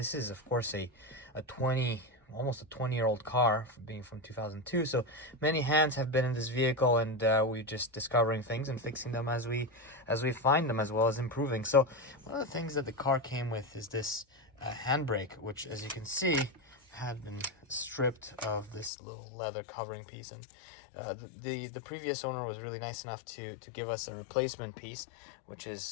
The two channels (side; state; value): right; drops out; at 18.9 s